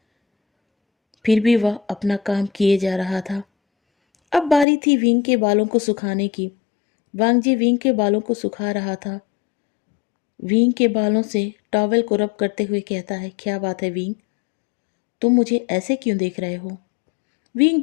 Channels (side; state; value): right; drops out; at 4.7 s